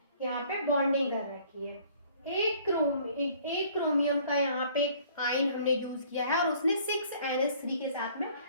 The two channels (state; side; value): inverted; both; correlation -0.56